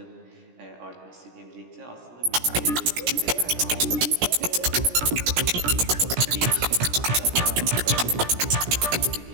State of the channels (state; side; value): late; left; 17 ms